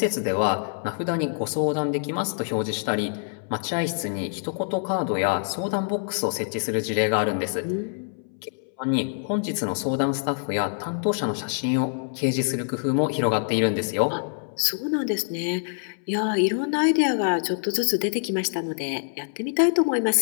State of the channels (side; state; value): right; silent; 61 dB below the other